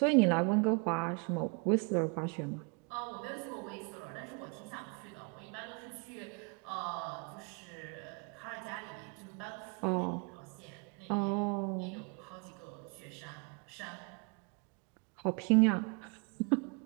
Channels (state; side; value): quieter; left; 34.2 dB